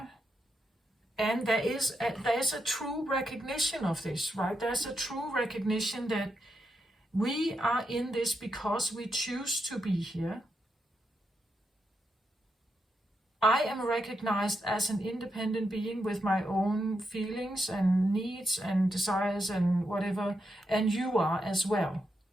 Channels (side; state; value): both; normal; correlation 0.83